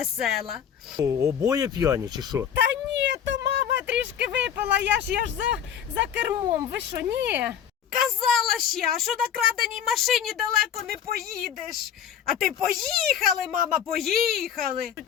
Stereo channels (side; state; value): right; quieter; 8.9 dB